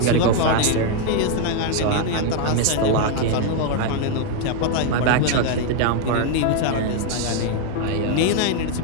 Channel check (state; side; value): different; both; correlation 0.01